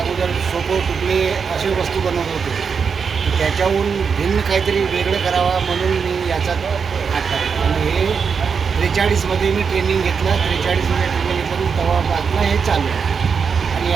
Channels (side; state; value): left; quieter; 6.0 dB